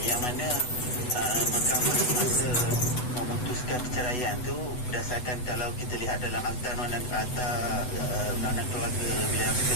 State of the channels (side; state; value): right; late; 8.0 ms